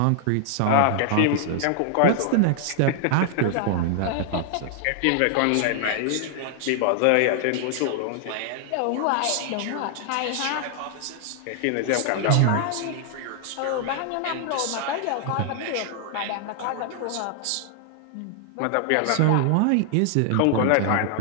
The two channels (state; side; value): different; both; correlation 0.00